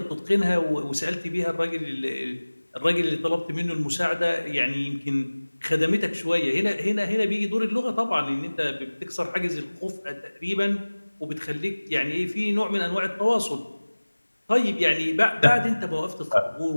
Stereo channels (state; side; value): inverted; both; correlation -1.00